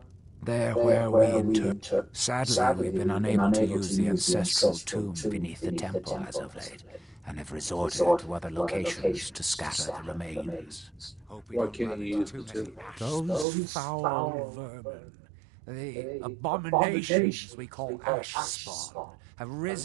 There where we inter... Sadly, we've been unable to use the ancestral tomb beneath the temple as of late, and have resorted to other locations to scatter the remains. Why can't you use the tomb? Those foul vermin, the abominations we call ash spawn, have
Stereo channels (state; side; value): drops out; left; at 13.5 s